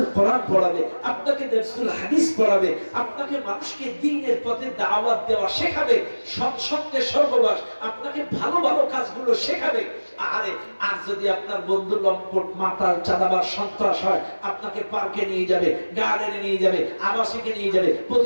কোরআন পড়াবে, আপনাকে দারসুল হাদিস পড়াবে, আপনাকে মানুষকে দ্বীনের পথে দাওয়াত দেওয়া শেখাবে, সৎসঙ্গে সহবাস, আপনাকে ভালো ভালো কাজগুলো শেখাবে। আরে আর যদি আপনার বন্ধু লম্পট, মাতাল, চাঁদাবাজ, সন্ত্রাস হয়, আপনাকে পার্কে নিয়ে যাবে, গার্ডেনে নিয়ে যাবে, আবাসিকে নিয়ে যাবে,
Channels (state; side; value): inverted; both; correlation -1.00